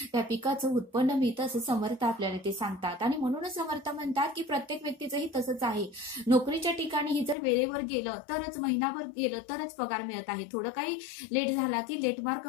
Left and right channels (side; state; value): right; drops out; at 7.4 s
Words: त्या पिकाचं उत्पन्न मिळतं, असं समर्थ आपल्याला ते सांगतात. आणि म्हणूनच समर्थ म्हणतात की प्रत्येक व्यक्तीचंही तसंच आहे. नोकरीच्या ठिकाणी जर वेळेवर गेलं तरच, महिनाभर गेलं तरच पगार मिळत आहे, थोडं काही लेट झाला की लेट मार्क